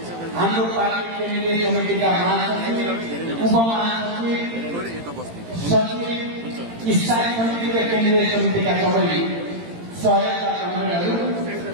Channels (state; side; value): late; left; 18 ms